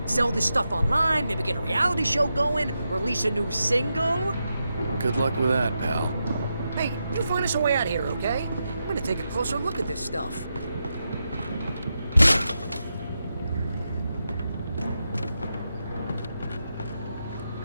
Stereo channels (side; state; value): both; inverted; correlation -0.87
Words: sell this stuff online, maybe get a reality show going, release a new single. Good luck with that, pal. Hey, you find us a way out here, okay? I'm gonna take a closer look at this stuff.